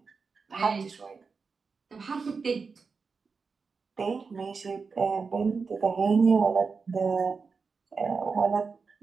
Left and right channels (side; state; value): left; quieter; 4.9 dB